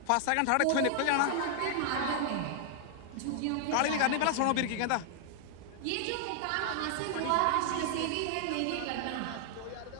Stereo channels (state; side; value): different; both; correlation 0.00